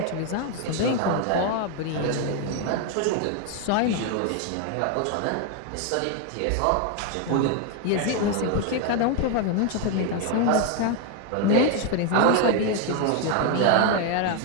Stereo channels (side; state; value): both; different; correlation 0.01